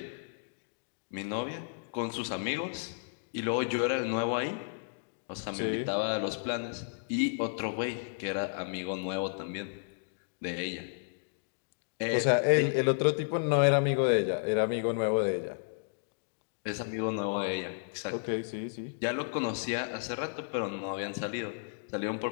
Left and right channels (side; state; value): right; silent; digital silence